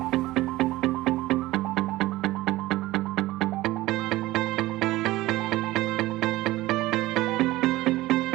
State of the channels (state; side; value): quieter; left; 17.8 dB